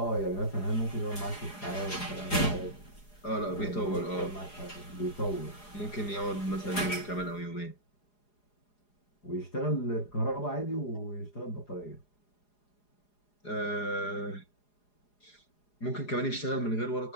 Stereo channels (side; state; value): right; late; 4.9 ms